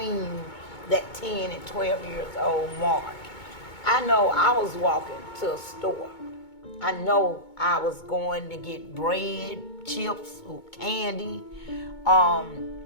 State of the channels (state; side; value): late; right; 2.2 ms